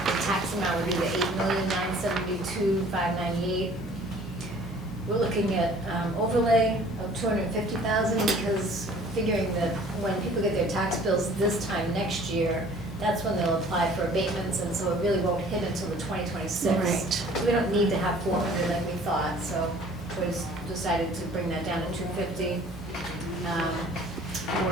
tax amount would be the $8,972,598. We're looking at overlay of $250,000 because figuring that when people get their tax bills this time next year, that's when they'll apply for abatements, and so it really won't hit until the 2026. Right. So we don't need to have 400 like we thought, so we decided to bring that down to 250.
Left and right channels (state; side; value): normal; both; correlation 0.51